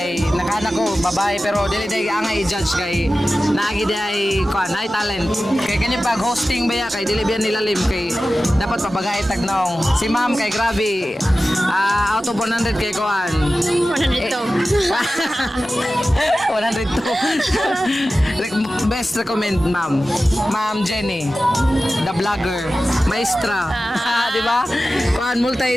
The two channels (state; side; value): normal; both; correlation 0.95